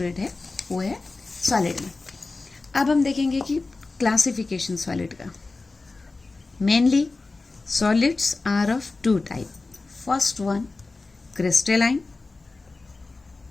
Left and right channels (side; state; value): right; quieter; 3.6 dB